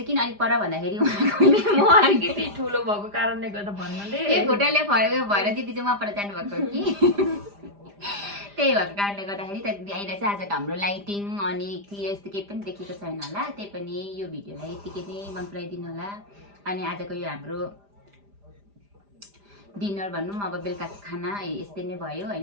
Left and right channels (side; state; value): left; late; 5.0 ms